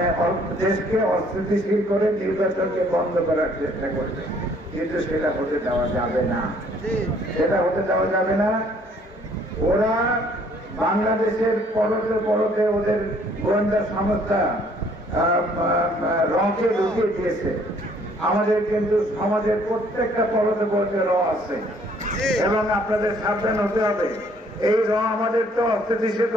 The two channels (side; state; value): both; normal; correlation 0.61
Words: দেশকে অস্থিতিশীল করে নির্বাচনকে বন্ধ করার চেষ্টা করবে, কিন্তু সেটা হতে দেওয়া যাবে না। সেটা হতে দেওয়া যাবে না। ওরা বাংলাদেশের পরতে ওদের গোয়েন্দা সংস্থা রকে ঢুকিয়ে দিয়েছে। আমাদের কিন্তু সমাজের প্রত্যেকটা পরতে র আছে, এবং আপনাদের সাবধান হতে হবে। এই র আমাদের তো অস্থিতিশীল